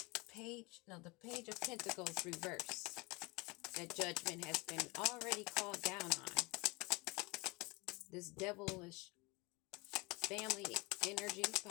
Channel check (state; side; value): quieter; right; 25.2 dB